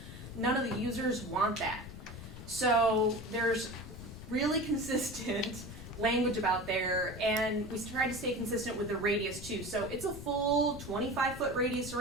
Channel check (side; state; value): left; noise; rumble, 14 dB below the sound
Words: none of the users want that. So there's really consistent language about there, and we try to stay consistent with the radius too. So it's a full 25-foot radius